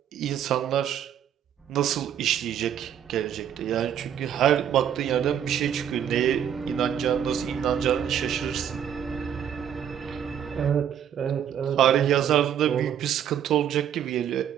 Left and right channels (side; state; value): left; quieter; 9.3 dB